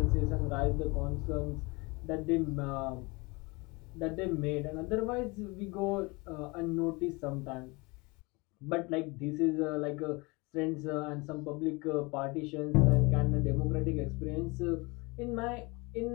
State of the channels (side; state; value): right; quieter; 26.4 dB